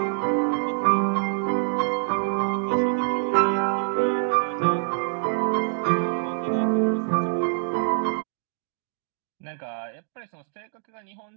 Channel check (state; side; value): silent; left; digital silence